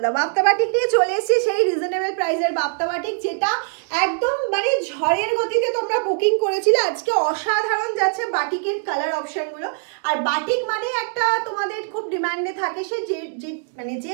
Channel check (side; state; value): left; silent; digital silence